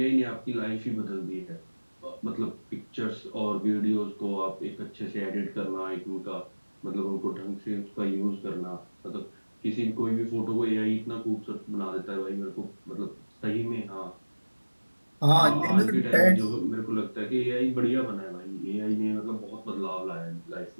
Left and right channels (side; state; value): both; inverted; correlation -1.00